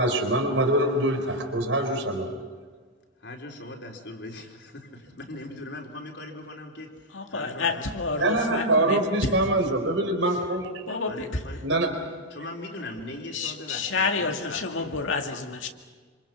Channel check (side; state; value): both; normal; correlation -0.02